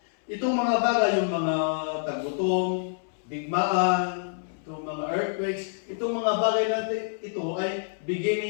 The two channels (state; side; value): silent; right; 60 dB below the other